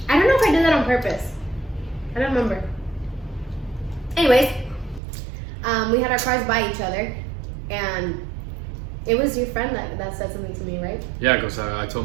I don't know if I did that on purpose. I don't remember. Anyways, we had our cars by each other, and it was your friend that said something to me, right? Yeah, because I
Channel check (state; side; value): drops out; left; at 5.0 s